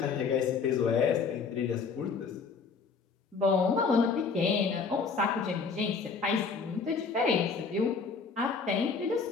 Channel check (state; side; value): quieter; right; 5.2 dB